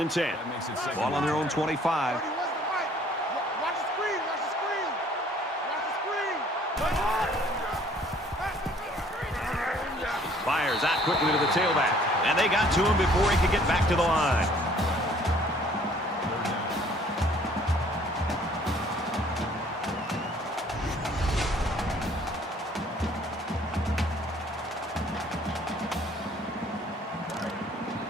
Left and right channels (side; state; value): both; normal; correlation 0.58